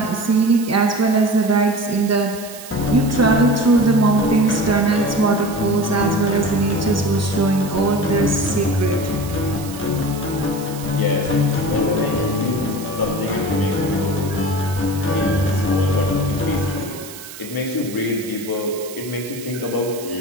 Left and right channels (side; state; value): right; noise; hiss, 15 dB below the sound